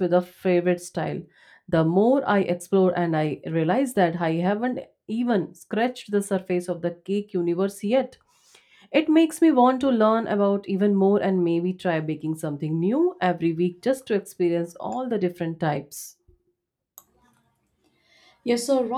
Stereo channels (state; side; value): identical; both; correlation 1.00